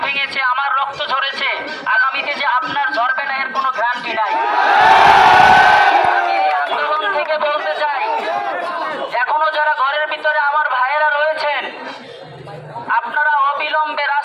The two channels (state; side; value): identical; both; correlation 1.00